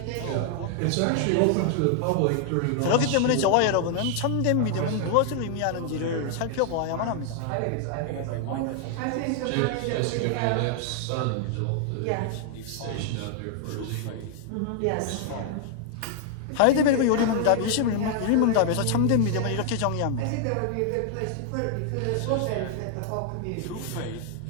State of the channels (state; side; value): different; both; correlation 0.00